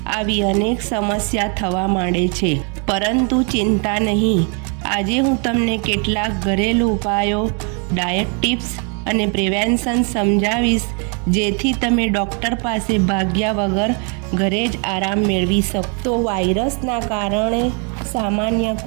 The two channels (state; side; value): quieter; left; 37.8 dB